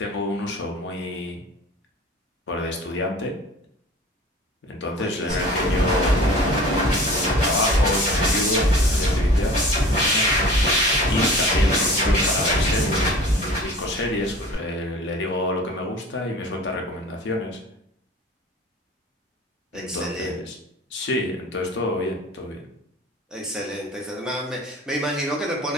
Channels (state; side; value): normal; both; correlation 0.42